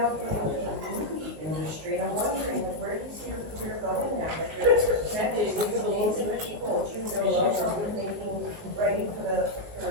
getting into the movie industry, and I'm wondering, like, where do you see your career going now? Like, you're connected with amazing people. Do you see yourself thinking, writing for the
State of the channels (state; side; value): late; left; 19 ms